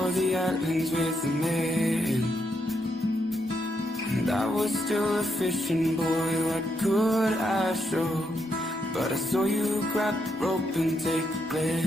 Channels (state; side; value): normal; both; correlation 0.79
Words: the islands with the man. And I was still a fishing boy, what could I show? But I saw you grab the rope and take a